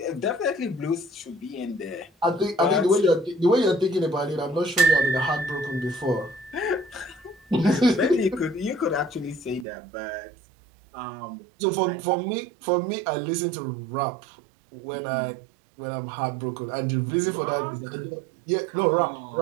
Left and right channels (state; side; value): drops out; left; at 9.7 s